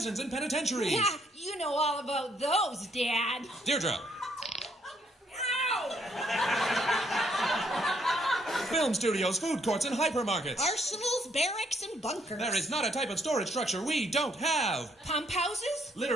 and penitentiaries. Yeah, you know all about those, Dad. Deirdre. Ow! Film studios, food courts, and hypermarkets. Arsenals, barracks, and bunkers. There is not a type of storage structure we don't have. Pump houses?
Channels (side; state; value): both; normal; correlation 0.69